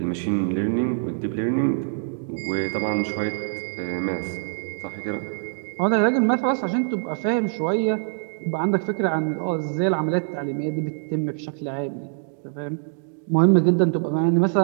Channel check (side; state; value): left; silent; digital silence